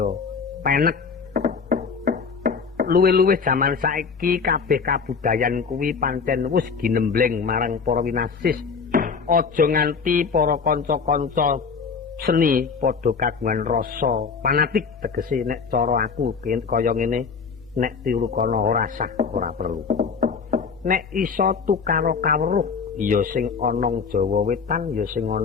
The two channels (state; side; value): quieter; right; 5.6 dB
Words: penek. Luwih-luwih jaman saiki kabeh kabudayan kuwi pancen wis ginembleng marang para winasis. Aja nganti para kanca-kanca seni padha kagungan rasa fanatik tegese nek cara aku kaya ngene. Nek tiru kono ora sah ora perlu. Nek iso tukaro kawruh ya sing ana Jawa Wetan ya sing